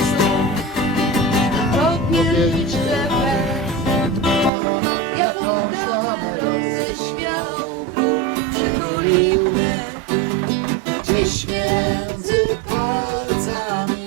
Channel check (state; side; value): drops out; left; at 4.5 s